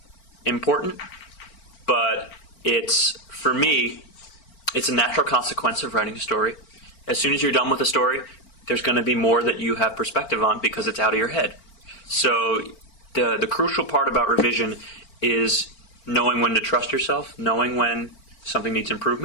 important, but for me, it's a natural consequence of writing a story. As soon as you're done with a story, there's going to be more that you have perspective on because it's out of your head. So the crucial part about revision is knowing when to trust yourself, knowing when something needs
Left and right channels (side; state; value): right; late; 4.4 ms